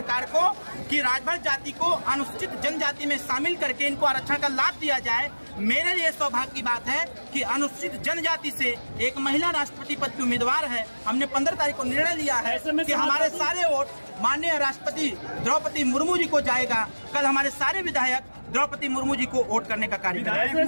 को कि राजभर जाति को अनुसूचित जनजाति में शामिल करके इनको आरक्षण का लाभ दिया जाए। मेरे लिए सौभाग्य की बात है कि अनुसूचित जनजाति से एक महिला राष्ट्रपति पद की उम्मीदवार है। हमने 15 तारीख को निर्णय लिया है कि हमारे सारे वोट माननीय राष्ट्रपति द्रौपदी मुर्मू जी को जाएगा। कल हमारे सारे विधायक द्रौपदी मुर्मू जी को वोट करने का कार्य करेंगे।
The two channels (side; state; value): both; inverted; correlation -1.00